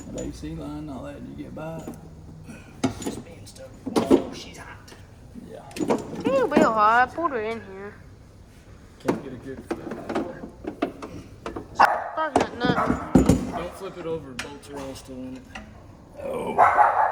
AC line, all that you get by. Spin stuff. Oh, she's hot. Yeah. It'll be hot. I pulled her in here. Can't get a good flip. Talking about nothing. Don't flip it over. Bolts are all still in it.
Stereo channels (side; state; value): both; identical; correlation 1.00